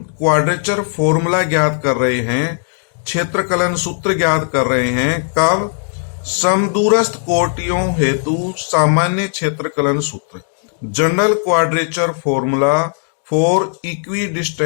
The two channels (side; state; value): right; silent; digital silence